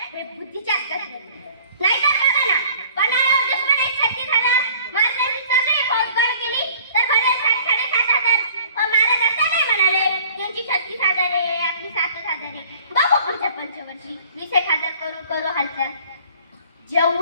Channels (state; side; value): inverted; both; correlation -0.51